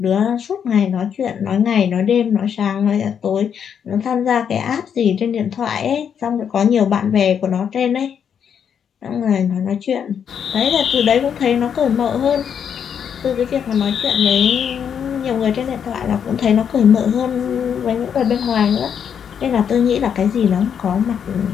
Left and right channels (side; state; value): right; quieter; 7.9 dB